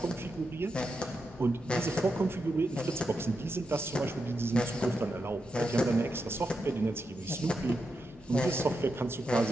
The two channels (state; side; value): normal; both; correlation 0.86